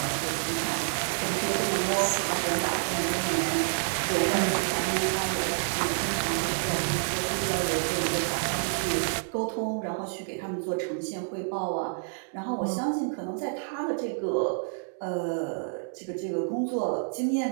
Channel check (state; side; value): silent; left; digital silence